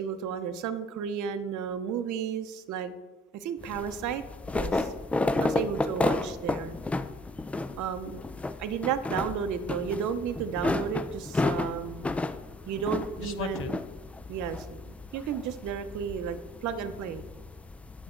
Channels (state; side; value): normal; both; correlation 0.55